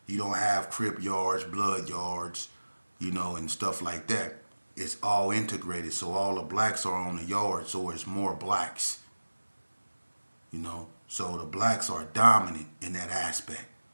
You don't have Crip yards, Blood yards, and stuff like that. It's all integrated. So all the blacks are on the yard. So it's more blacks, So the blacks are dominant in that aspect.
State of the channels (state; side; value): inverted; both; correlation -1.00